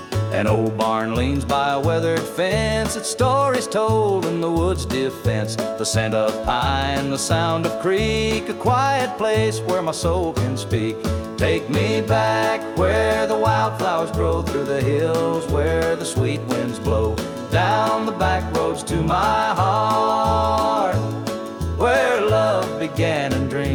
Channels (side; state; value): both; identical; correlation 1.00